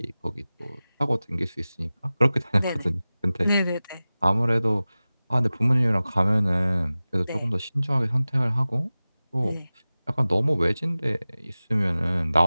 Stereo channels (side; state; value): both; inverted; correlation -0.97